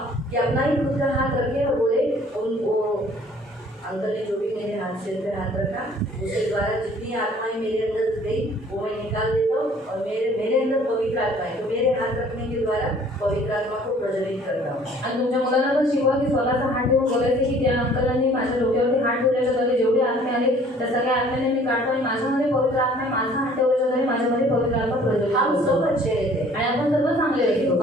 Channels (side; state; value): both; normal; correlation 0.55